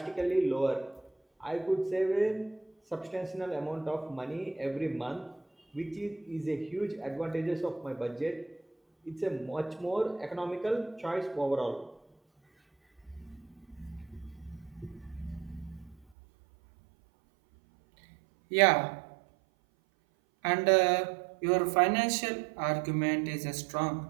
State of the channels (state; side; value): drops out; left; at 16.0 s